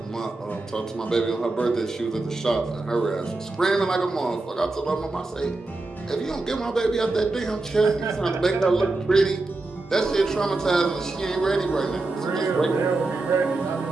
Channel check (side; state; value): left; quieter; 3.2 dB